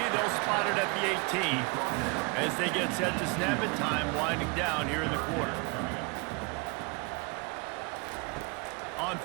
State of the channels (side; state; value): left; quieter; 30.7 dB